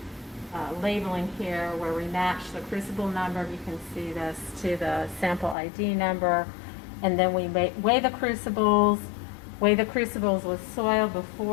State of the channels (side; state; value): right; drops out; at 5.6 s